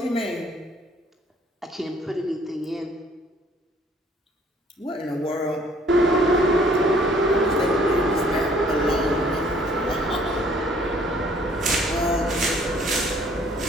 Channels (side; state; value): both; normal; correlation 0.59